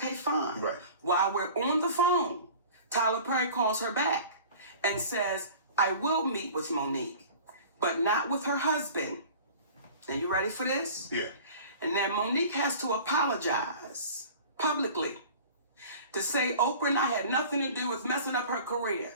fine. Right. While we're on the phone, Tyler Perry calls her back and says, I will meet with Monique, but not with her husband. Now, you ready for this? Yeah. And then Monique has to apologize publicly to say Oprah and I had nothing to do with messing up her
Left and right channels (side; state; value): both; inverted; correlation -0.42